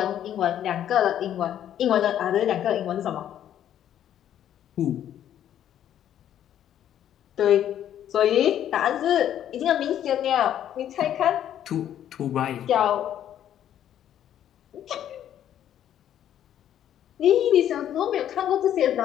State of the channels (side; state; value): right; quieter; 10.7 dB